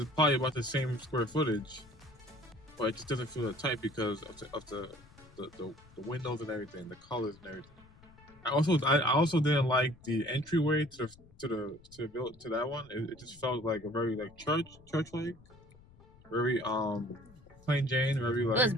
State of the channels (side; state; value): left; noise; rumble, 24 dB below the sound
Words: probably about the same square footage, but it just doesn't feel that tight because of the windows and everything, the colors and everything. I also didn't like the entryway to that one. It just felt like a very like church like, very plain Jane, very like. It was